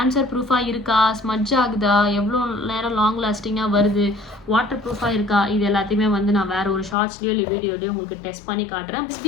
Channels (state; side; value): drops out; right; at 7.0 s